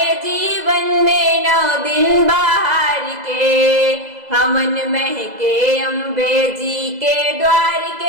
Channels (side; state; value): left; late; 2.0 ms